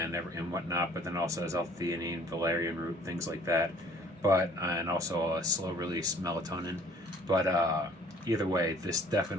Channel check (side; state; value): both; normal; correlation 0.55